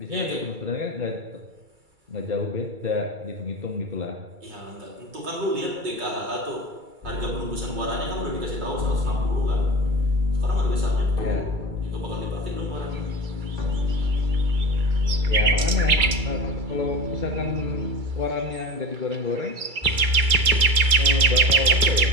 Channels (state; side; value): late; left; 2.3 ms